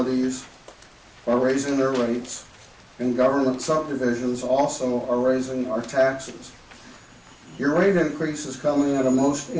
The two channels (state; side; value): identical; both; correlation 1.00